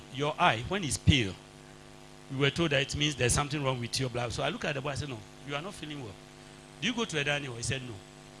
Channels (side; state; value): both; identical; correlation 1.00